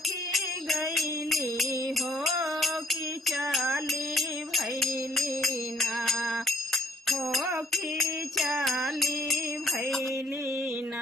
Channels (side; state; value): both; normal; correlation 0.65